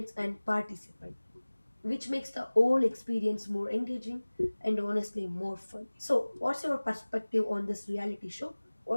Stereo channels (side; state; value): both; inverted; correlation -1.00